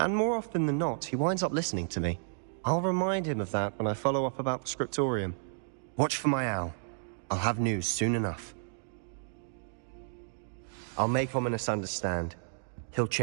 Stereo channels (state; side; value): silent; left; digital silence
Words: more often than not, he winds up listening to me. I'll remind him of that when I follow up about the scriptorium. Watch for my owl. I'll have news soon enough. I'll make Ominous understand. He'll